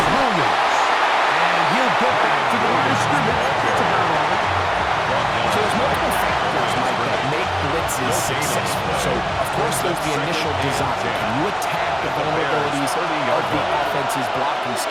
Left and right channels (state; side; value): identical; both; correlation 1.00